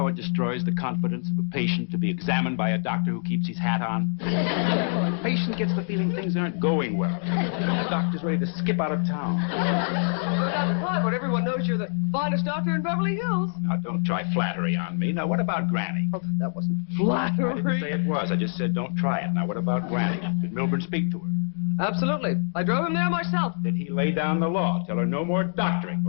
it destroys the confidence of a patient to be examined by a doctor who keeps his hat on? The patient gets the feeling things aren't going well. The doctor's ready to skip out of town. Well, Dr. Clyburn, everyone knows you're the finest doctor in Beverly Hills. Now, don't try flattery on me. Now, what about Granny? Oh, that wasn't flattery. I didn't say it was. I just said don't try it. Now, what about Granny? Did Milburn speak to her? Absolutely. I drove him there myself. Did he lay down the law, tell her no more doctoring,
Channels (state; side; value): silent; right; 61 dB below the other